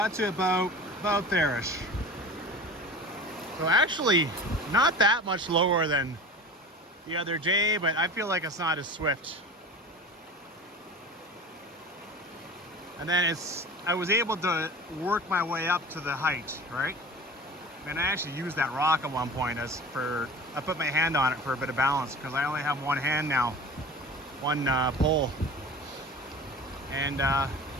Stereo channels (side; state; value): both; normal; correlation 0.36